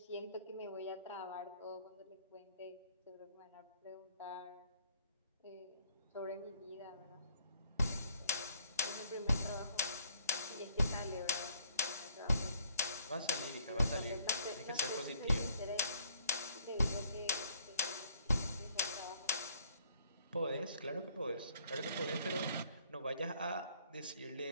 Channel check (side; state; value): both; inverted; correlation -0.62